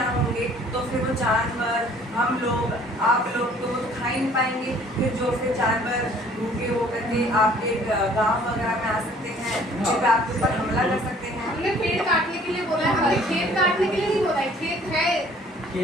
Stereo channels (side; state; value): both; normal; correlation 0.55